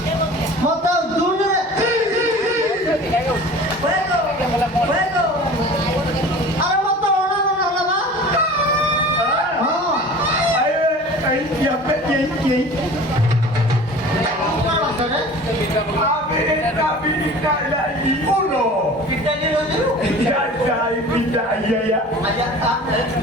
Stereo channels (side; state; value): both; normal; correlation 0.41